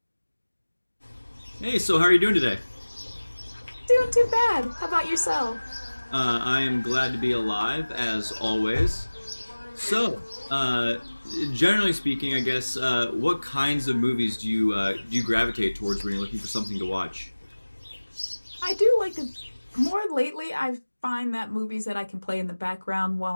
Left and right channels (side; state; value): both; inverted; correlation -1.00